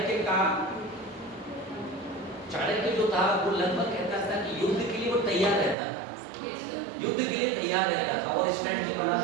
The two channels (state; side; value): drops out; left; at 5.8 s